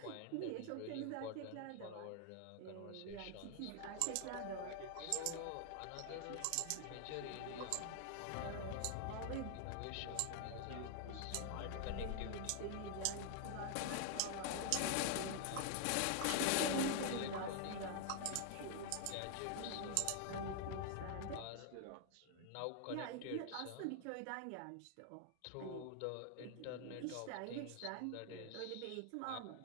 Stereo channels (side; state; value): both; different; correlation 0.00